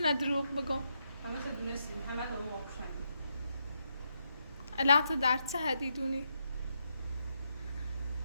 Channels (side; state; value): both; inverted; correlation -0.81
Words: دروغ بگم همه چه دونستیم همه دارو واقعشنگی الان تو در چه حدی دونی؟